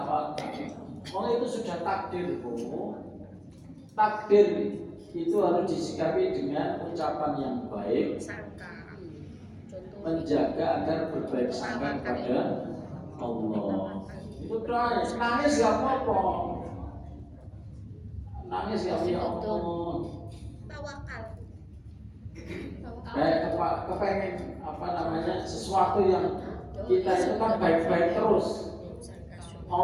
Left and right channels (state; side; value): identical; both; correlation 1.00